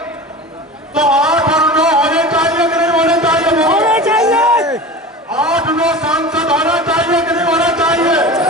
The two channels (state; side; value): normal; both; correlation 0.33